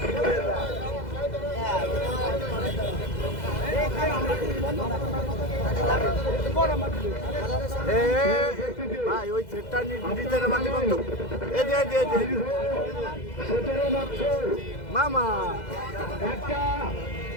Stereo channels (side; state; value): right; late; 2.0 ms